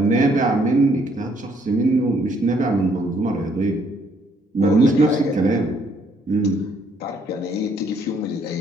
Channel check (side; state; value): both; normal; correlation 0.67